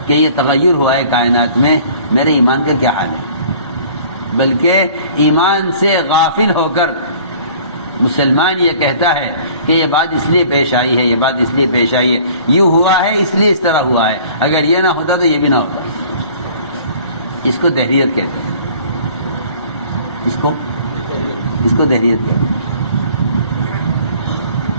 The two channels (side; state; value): both; inverted; correlation -0.51